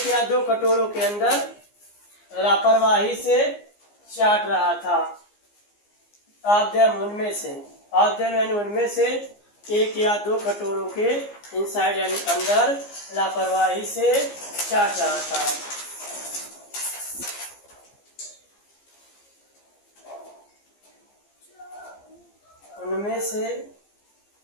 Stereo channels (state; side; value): late; right; 15 ms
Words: या दो कटोरों के अंदर लापरवाही से चाट रहा था। ऑफ देम उनमें से, ऑफ देम यानी उनमें से, एक या दो कटोरों के इनसाइड यानी अंदर लापरवाही से चाट रहा था। उनमें से,